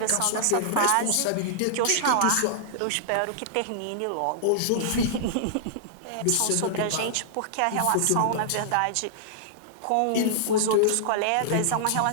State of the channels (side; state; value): both; different; correlation -0.02